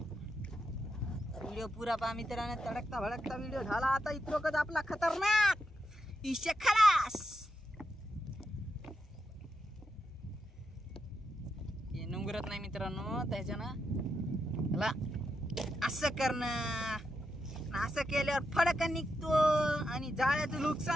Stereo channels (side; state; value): both; normal; correlation 0.84